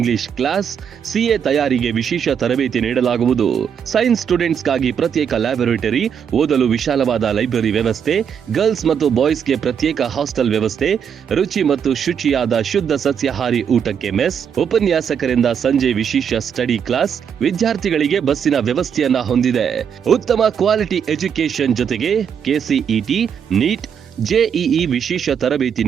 ಕ್ಲಾಸ್, ಸಿಎ ತಯಾರಿಗೆ ವಿಶೇಷ ತರಬೇತಿ ನೀಡಲಾಗುವುದು. ಸೈನ್ಸ್ ಸ್ಟೂಡೆಂಟ್ಸ್ಗಾಗಿ ಪ್ರತ್ಯೇಕ ಲ್ಯಾಬೊರೇಟರಿ, ಓದಲು ವಿಶಾಲವಾದ ಲೈಬ್ರರಿ ವ್ಯವಸ್ಥೆ, ಗರ್ಲ್ಸ್ ಮತ್ತು ಬಾಯ್ಸ್ಗೆ ಪ್ರತ್ಯೇಕ ಹಾಸ್ಟೆಲ್ ವ್ಯವಸ್ಥೆ, ರುಚಿ ಮತ್ತು ಶುಚಿಯಾದ ಶುದ್ಧ ಸಸ್ಯಾಹಾರಿ ಊಟಕ್ಕೆ ಮೆಸ್, ಉಪನ್ಯಾಸಕರಿಂದ ಸಂಜೆ ವಿಶೇಷ ಸ್ಟಡಿ ಕ್ಲಾಸ್, ವಿದ್ಯಾರ್ಥಿಗಳಿಗೆ ಬಸ್ಸಿನ ವ್ಯವಸ್ಥೆಯನ್ನ ಹೊಂದಿದೆ. ಉತ್ತಮ ಕ್ವಾಲಿಟಿ ಎಜುಕೇಶನ್ ಜೊತೆಗೆ ಕೆಸಿಇಟಿ, ನೀಟ್, ಜೆಇಇ ವಿಶೇಷ ತರಬೇತಿ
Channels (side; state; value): left; quieter; 7.7 dB